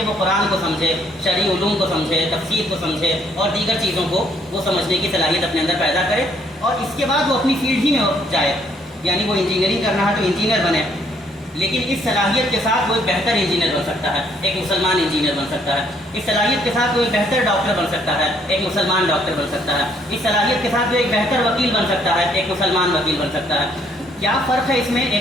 وہ قرآن کو سمجھے، شرعی علوم کو سمجھے، تفسیر کو سمجھے اور دیگر چیزوں کو وہ سمجھنے کی صلاحیت اپنے اندر پیدا کرے، اور اس کے بعد وہ اپنی فیلڈ ہی میں جائے. یعنی وہ انجینئرنگ کرنا ہے تو انجینئر بنے، لیکن اس صلاحیت کے ساتھ وہ ایک بہتر انجینئر بن سکتا ہے، ایک مسلمان انجینئر بن سکتا ہے. اس صلاحیت کے ساتھ وہ ایک بہتر ڈاکٹر بن سکتا ہے، ایک مسلمان ڈاکٹر بن سکتا ہے. اس صلاحیت کے ساتھ وہ ایک بہتر وکیل بن سکتا ہے، ایک مسلمان وکیل بن سکتا ہے. کیا فرق ہے اس میں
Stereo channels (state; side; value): normal; both; correlation 0.66